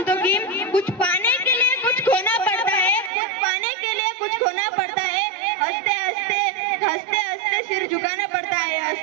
की कुछ पाने के लिए कुछ खोना पड़ता है, कुछ पाने के लिए कुछ खोना पड़ता है, हंसते हंसते हंसते हंसते सिर झुकाना पड़ता है,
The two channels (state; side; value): drops out; left; at 3.1 s